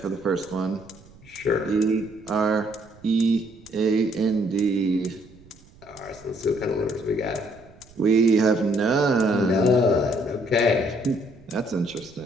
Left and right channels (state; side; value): noise; right; rumble, 25 dB below the sound